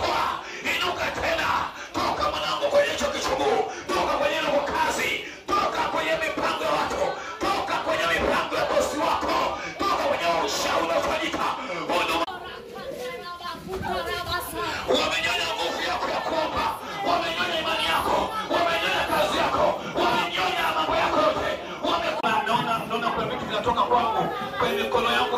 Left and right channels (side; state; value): both; identical; correlation 1.00